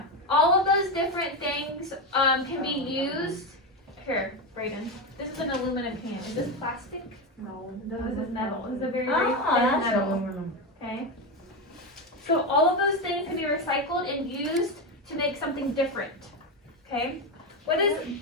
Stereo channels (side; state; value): both; normal; correlation 0.13